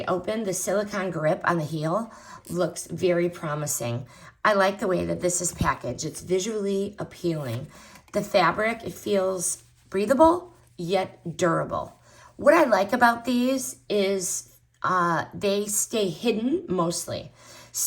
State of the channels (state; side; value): identical; both; correlation 1.00